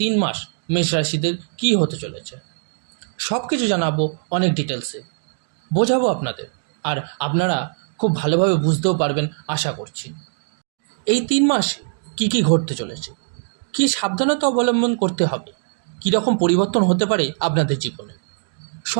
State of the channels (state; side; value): silent; left; digital silence